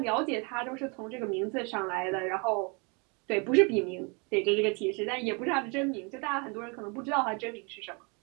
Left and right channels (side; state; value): left; quieter; 32.4 dB